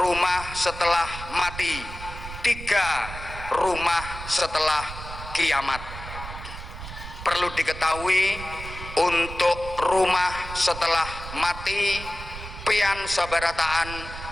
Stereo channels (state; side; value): noise; right; rumble, 11 dB below the sound